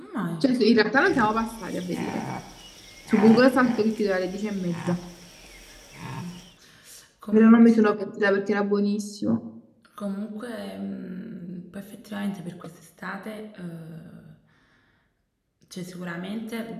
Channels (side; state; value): both; identical; correlation 1.00